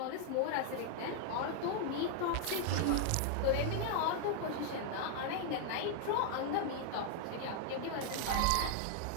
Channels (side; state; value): both; different; correlation 0.00